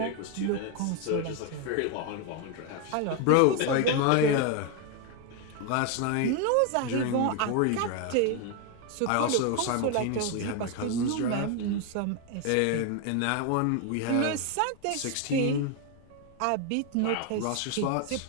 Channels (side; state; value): both; different; correlation 0.01